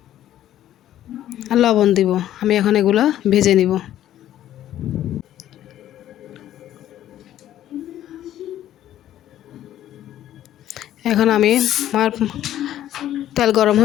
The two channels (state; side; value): quieter; right; 12.3 dB